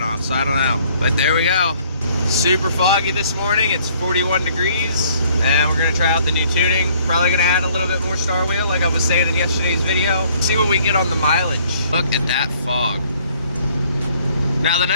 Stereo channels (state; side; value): inverted; both; correlation -0.61